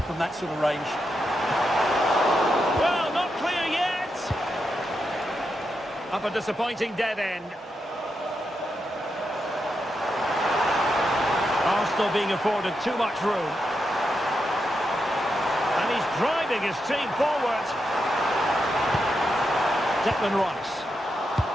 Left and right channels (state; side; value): normal; both; correlation 0.85